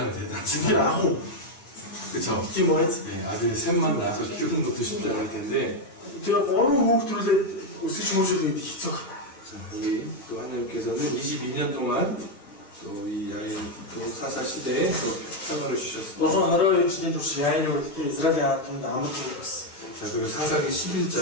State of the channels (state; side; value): late; right; 9.1 ms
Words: 대단하지. 지금 아고 그쵸? 지금 뭐였지? 네, 아들 셋만 낳아서 키우는 것도 쉽지 않을 텐데 제가 어느 호흡들을 өсөж хүмүүжүүлээд хийцүү. 자, 여기 또 하나님께서는 22년 동안 또 이 야일 또 사사 시대에 또 평화를 주셨습니다. 너선 하루에 지낸 турш яаны үлдээ Израилийн ард түмэнд амар болсон. 자, 그리고 사사기